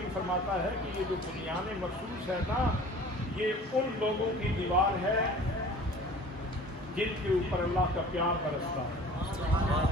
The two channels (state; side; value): normal; both; correlation 0.45